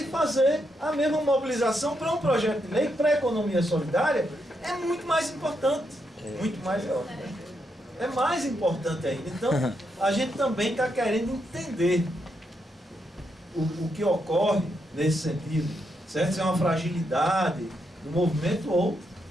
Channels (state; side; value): normal; both; correlation 0.81